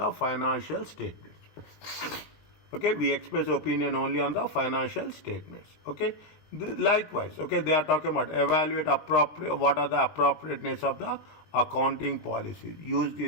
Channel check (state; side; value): late; right; 20 ms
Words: financial statements. Okay, we express opinion only on the financial statements. Okay. Likewise, okay, they are talking about evaluate what are the appropriateness of the accounting policies used